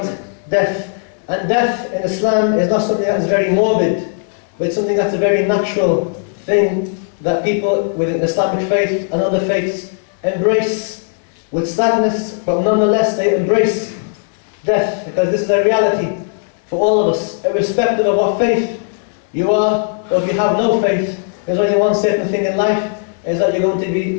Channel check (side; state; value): right; silent; 67 dB below the other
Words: death. And death in Islam is not something that is very morbid, but it's something that's a very natural thing that people within Islamic faith and other faiths embrace with sadness, but nonetheless they embrace death, because this is a reality for all of us, irrespective of what faith you are, or if you have no faith. There's only one certain thing in life, is that you're going to